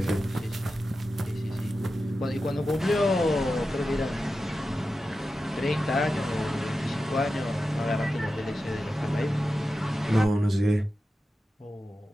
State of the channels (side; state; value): both; normal; correlation 0.92